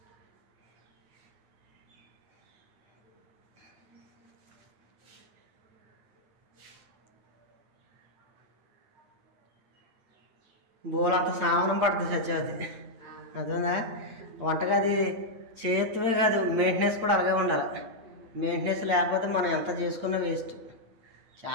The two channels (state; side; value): late; left; 8.9 ms